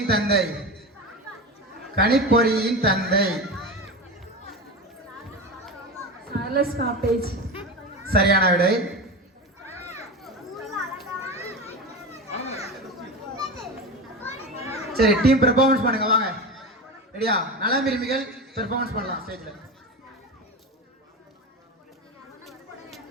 தந்தை? கணிப்பொறியின் தந்தை? Charles Babbage. சரியான விடை. சரி, டீம் பெர்ஃபார்மன்ஸ் பண்ணுங்க, வாங்க. ரெடியா? நலம் விரும்பிகள் பெர்ஃபார்மன்ஸ் பண்ணலாம் ஸ்டேஜ்ல.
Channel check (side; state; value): both; normal; correlation 0.24